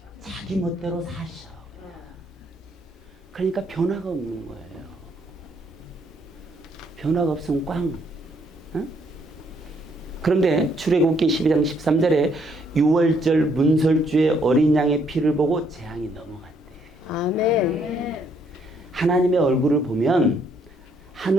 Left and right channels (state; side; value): normal; both; correlation 0.70